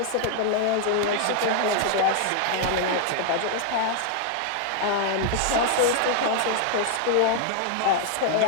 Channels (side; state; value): both; different; correlation 0.00